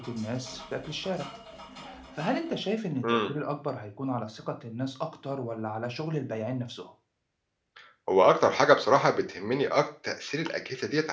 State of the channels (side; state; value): both; identical; correlation 1.00